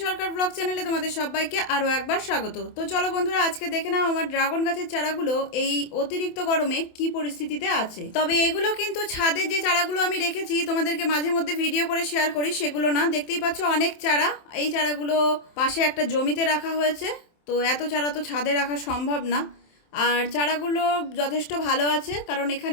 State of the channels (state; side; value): late; right; 27 ms